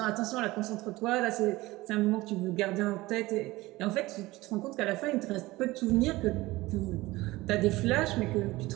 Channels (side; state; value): left; quieter; 19.5 dB